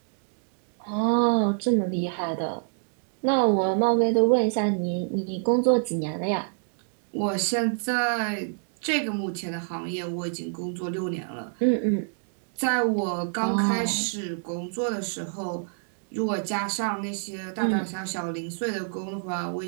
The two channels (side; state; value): left; silent; digital silence